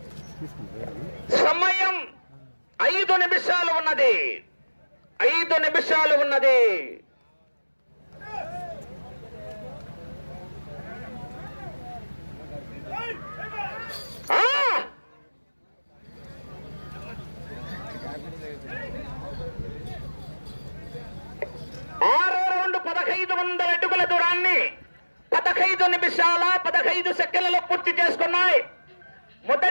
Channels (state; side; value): inverted; both; correlation -1.00